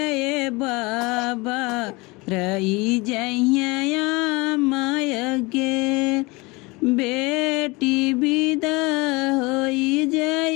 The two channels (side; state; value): right; quieter; 24.9 dB